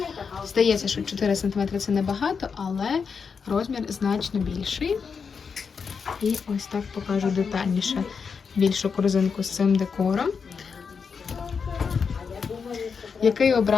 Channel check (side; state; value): right; quieter; 5.8 dB